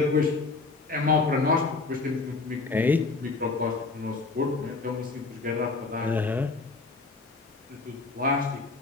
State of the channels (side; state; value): right; quieter; 3.9 dB